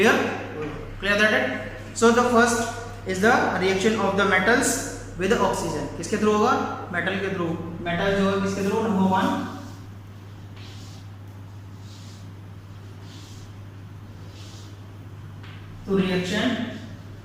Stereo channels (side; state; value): both; identical; correlation 1.00